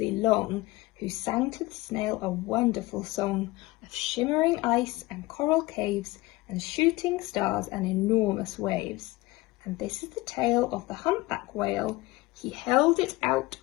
long, who sang to the snail a wonderful song of shimmering ice and coral caves and shooting stars and enormous waves. And this is the tale of the humpback whale. He held it out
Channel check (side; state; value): right; quieter; 20.5 dB